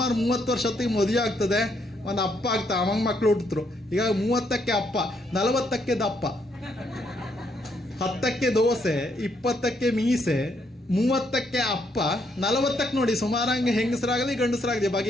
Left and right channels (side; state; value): both; normal; correlation 0.74